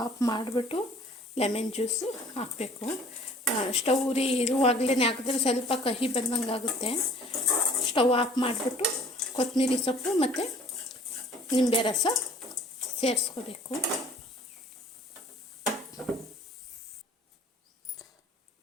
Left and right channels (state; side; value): normal; both; correlation 0.52